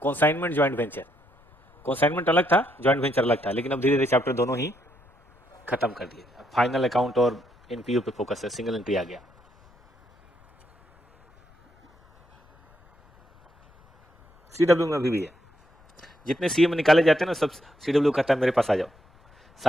कॉन्साइनमेंट ज्वाइंट वेंचर, कॉन्साइनमेंट अलग था, ज्वाइंट वेंचर अलग था, लेकिन अब धीरे धीरे चैप्टर दोनों ही खत्म कर दिए। फाइनल अकाउंट और एनपीयू पे फोकस है, सिंगल एंट्री आ गया। सीडब्ल्यू में अभी भी है, जितने सीएम निकाले जाते हैं ना सब सीडब्ल्यू कहता है मेरे पास आ जाओ,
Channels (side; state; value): left; noise; rumble, 30 dB below the sound